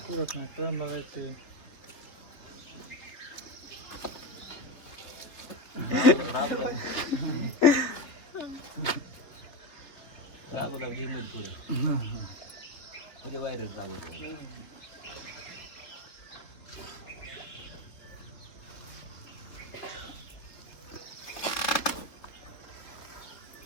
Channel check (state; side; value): late; right; 3.4 ms